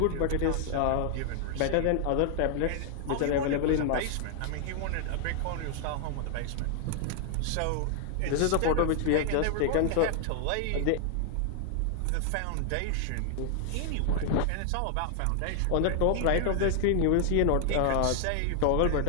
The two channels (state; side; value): different; both; correlation 0.00